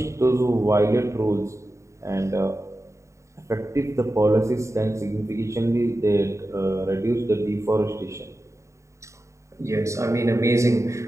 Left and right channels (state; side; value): late; left; 0.14 ms